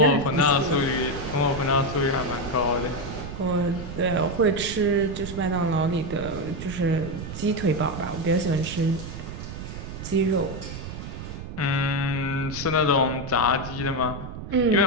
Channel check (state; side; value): noise; right; rumble, 9 dB below the sound